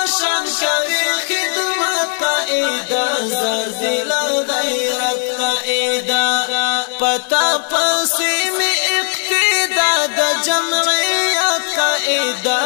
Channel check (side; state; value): right; silent; digital silence